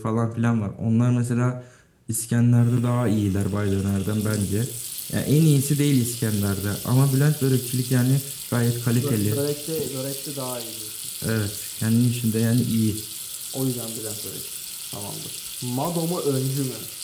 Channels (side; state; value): both; identical; correlation 1.00